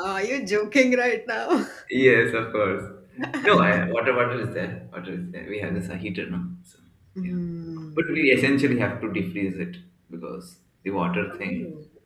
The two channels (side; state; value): both; identical; correlation 1.00